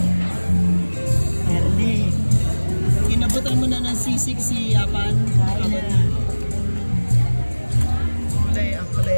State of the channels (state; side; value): inverted; both; correlation -1.00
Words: Ernie. Inabutan mo na ng sisig si Apan. Kain na. Kulay, ang kulay